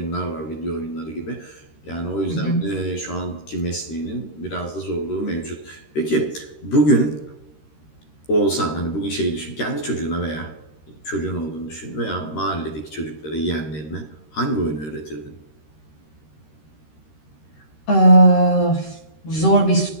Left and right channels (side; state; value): right; late; 13 ms